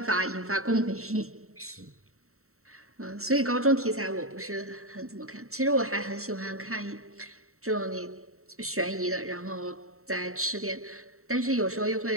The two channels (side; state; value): left; late; 0.63 ms